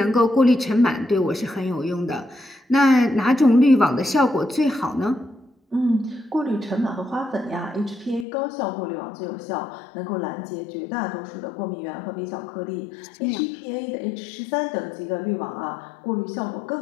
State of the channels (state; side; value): drops out; right; at 8.2 s